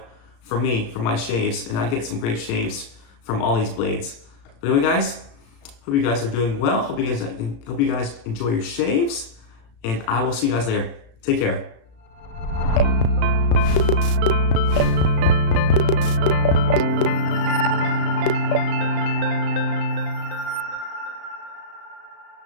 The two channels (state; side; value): late; right; 35 ms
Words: for me, for my shaves, and I get some great shaves from all these blades. But anyway, guys, hope you guys are doing well. Hope you guys enjoy your shaves, and I will see you guys later. Take care.